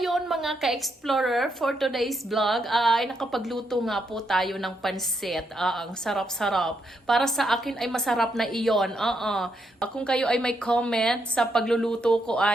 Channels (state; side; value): normal; both; correlation 0.79